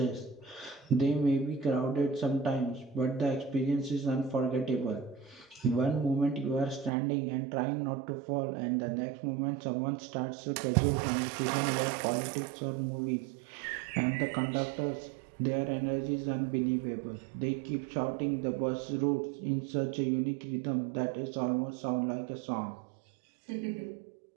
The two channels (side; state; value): left; drops out; at 6.9 s